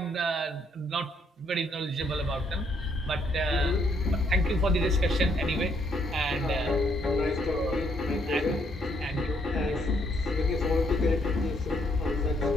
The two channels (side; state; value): both; normal; correlation 0.71